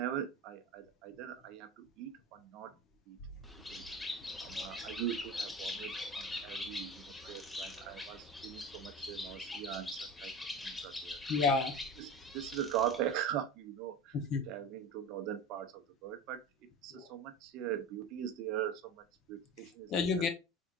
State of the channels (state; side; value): normal; both; correlation 0.30